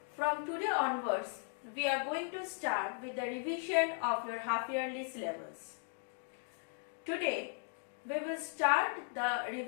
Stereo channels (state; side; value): silent; right; 53 dB below the other